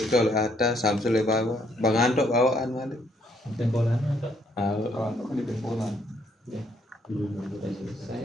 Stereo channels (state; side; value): normal; both; correlation 0.69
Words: oleh atas Samsul oleh bawah Bang Antok bawaan balik Tempolan apa? Kan di Polan. Udah